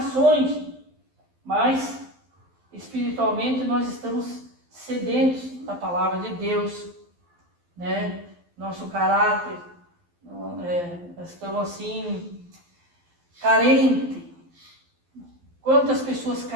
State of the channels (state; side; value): late; left; 12 ms